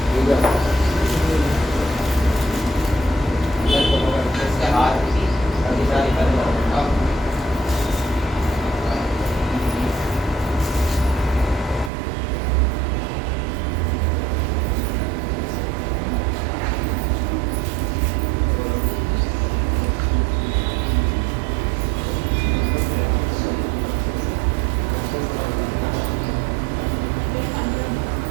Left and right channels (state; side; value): drops out; left; at 11.9 s